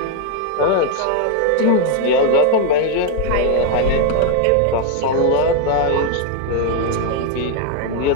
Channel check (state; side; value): different; both; correlation 0.01